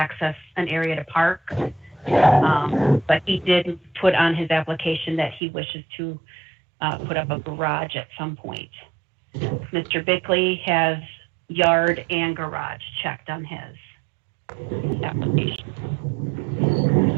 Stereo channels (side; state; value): left; drops out; at 5.4 s